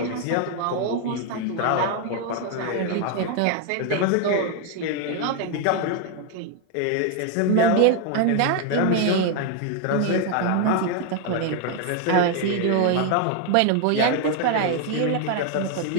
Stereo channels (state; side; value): different; both; correlation 0.01